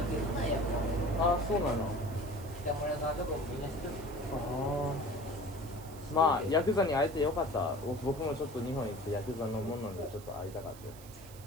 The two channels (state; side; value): noise; right; hiss, 19 dB below the sound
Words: るけどな、やっあ、そうなの。ぱ。北村さんとかもみんな知っとる。ああ。まあ、ヤクザに会えてよかった。僕もちょっと日本に行ってヤクザのものにちょっと会いたかった。